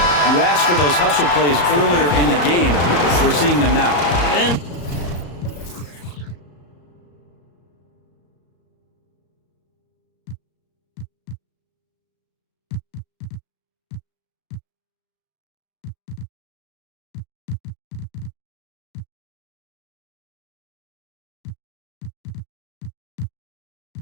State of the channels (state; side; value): late; right; 34 ms